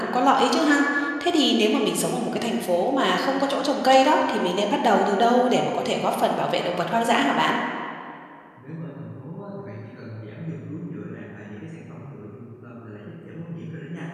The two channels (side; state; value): both; identical; correlation 1.00